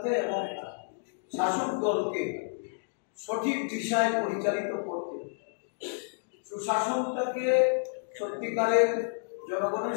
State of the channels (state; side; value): silent; right; digital silence